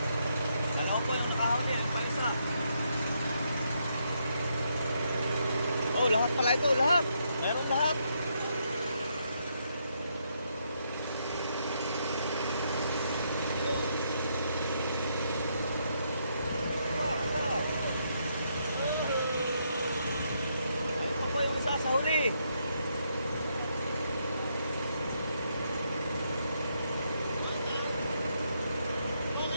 Kalaw po yung nakahuli, ano pa isa? Oh, lahat pala ito, lahat. Meron lahat. Ayun. Ayun pa po yung isa sa huli.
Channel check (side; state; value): both; inverted; correlation -0.77